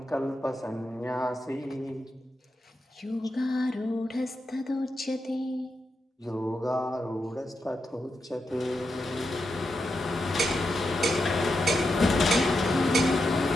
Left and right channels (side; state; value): both; normal; correlation 0.86